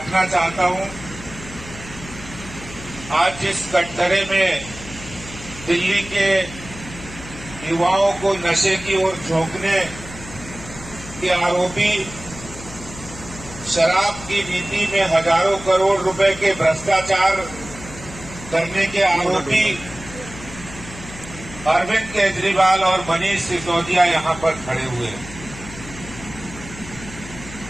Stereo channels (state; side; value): noise; left; hum, 14 dB below the sound